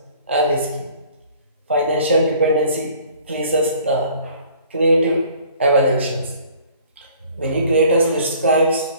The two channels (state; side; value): inverted; both; correlation -0.53